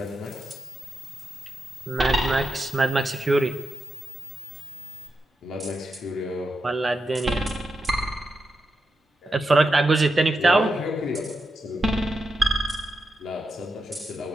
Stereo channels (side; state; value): both; normal; correlation 0.87